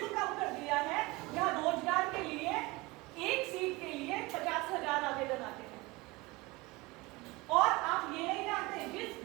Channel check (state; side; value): quieter; left; 22.9 dB